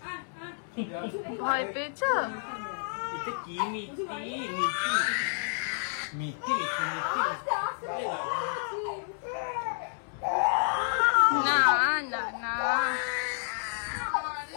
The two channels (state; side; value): silent; right; digital silence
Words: ভয় পেয়েছো? এটা কি মিষ্টি মিষ্টি মিষ্টি মিষ্টি না না না,